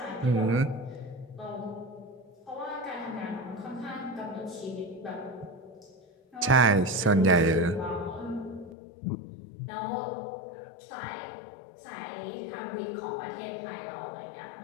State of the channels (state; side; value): drops out; right; at 8.8 s